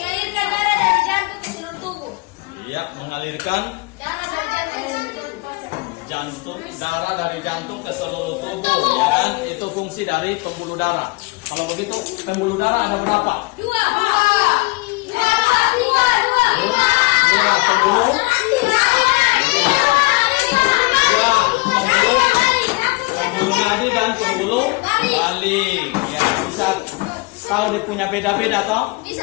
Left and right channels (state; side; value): quieter; right; 25.2 dB